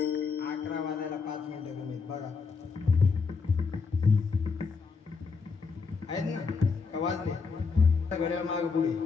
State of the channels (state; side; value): quieter; right; 4.9 dB